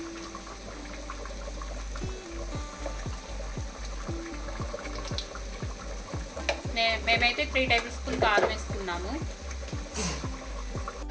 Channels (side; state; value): both; identical; correlation 1.00